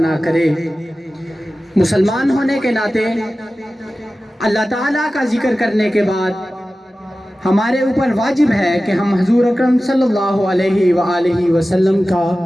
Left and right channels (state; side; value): normal; both; correlation 0.95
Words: کرے. مسلمان ہونے کے ناطے اللہ تعالیٰ کا ذکر کرنے کے بعد ہمارے اوپر واجب ہے کہ ہم حضور اکرم صلی اللہ علیہ وآلہ وسلم کا